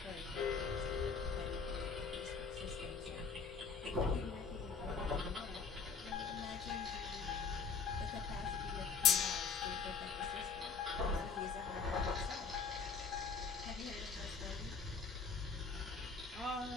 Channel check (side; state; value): right; quieter; 5.1 dB